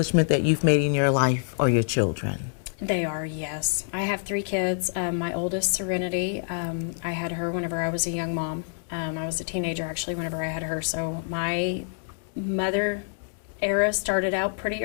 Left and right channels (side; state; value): right; silent; digital silence